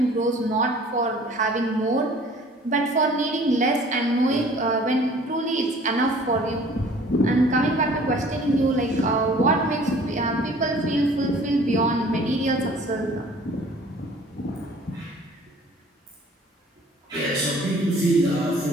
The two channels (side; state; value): both; normal; correlation 0.51